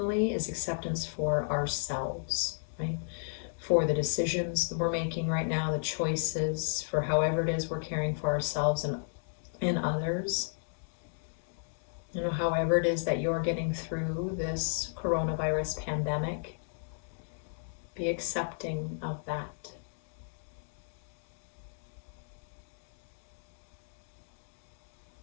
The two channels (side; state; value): right; silent; 56 dB below the other